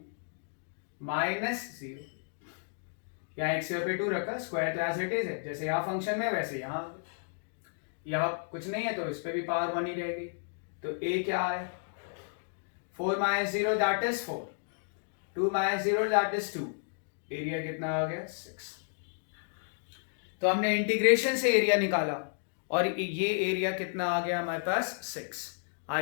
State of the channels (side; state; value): right; silent; digital silence